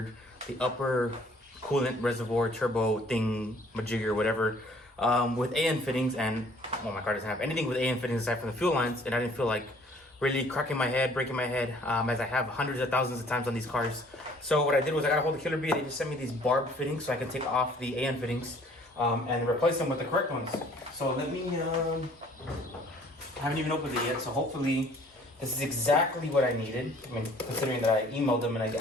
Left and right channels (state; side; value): normal; both; correlation 0.56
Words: the upper coolant reservoir turbo thing, majigger, whatever, with AN fittings, and well, my car doesn't have anything with AN fittings aside from the fuel lines, and I didn't feel like really cracking my head, breaking my head, as I have hundreds of thousands of times on these cars. So what I did was I got a hold of Killer Bee. They just sent me these barbed fittings so I can take off the AN fittings and replace them with the correct ones. So let me, I haven't even opened it yet, so hopefully this is exactly what I needed. I mean, considering that I emailed them and I